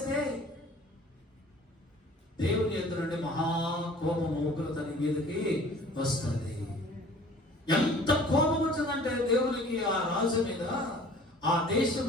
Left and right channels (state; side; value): normal; both; correlation 0.49